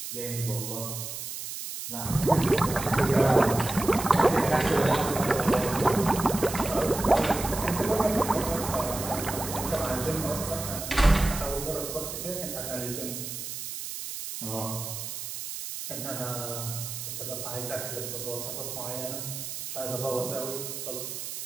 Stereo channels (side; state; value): right; noise; hiss, 7 dB below the sound